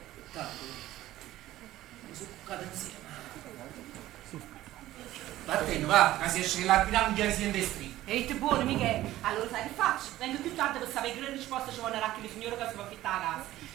mi sono cuccato insieme. Vattene, va, che si esce la piramide si in destri. Ehi, te buono, Michele. Allora sai che faccio? Vengo più tardi per sapere che risposta ci vuole racchi le signore che si va a fittare a casa.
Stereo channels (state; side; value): quieter; left; 15.1 dB